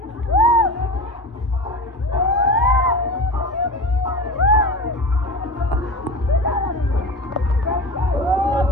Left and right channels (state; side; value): normal; both; correlation 0.29